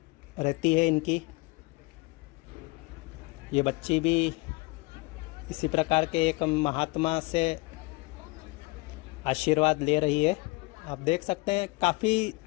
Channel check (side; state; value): right; quieter; 25.7 dB